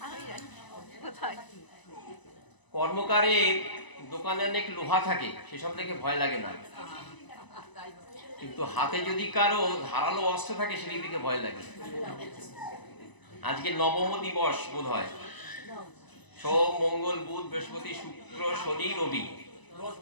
কর্মকারের দোকানে অনেক লোহা থাকে, সেসব দেখে ভয় লাগে না, কিন্তু হাতে যদি কারো ধারালো অস্ত্র থাকে সেটি দিকে ভয় লাগে। আজকে নবম দিবস বোধ হয়, সোম মঙ্গল বুধ বৃহস্পতি শুক্র শনি রবি,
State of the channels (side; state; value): right; late; 1.0 ms